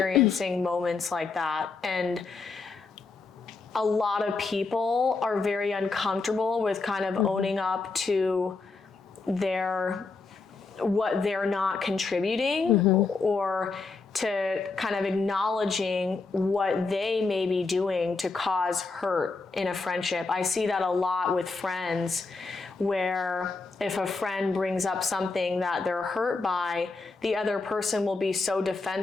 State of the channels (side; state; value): right; quieter; 4.1 dB